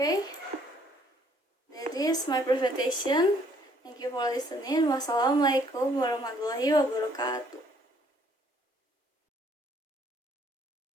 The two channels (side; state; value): both; normal; correlation 0.63